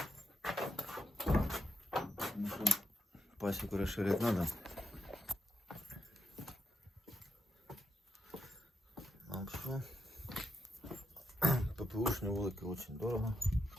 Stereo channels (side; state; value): both; normal; correlation 0.83